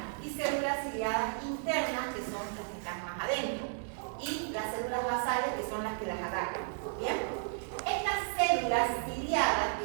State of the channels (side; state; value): left; silent; digital silence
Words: y células ciliadas internas, que son las que están más adentro, y las células basales, que son las que las agarran. ¿Bien? Estas células ciliadas,